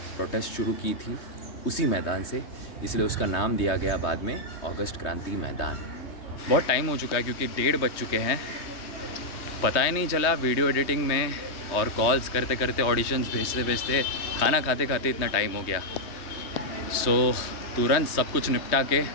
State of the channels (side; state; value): right; late; 3.2 ms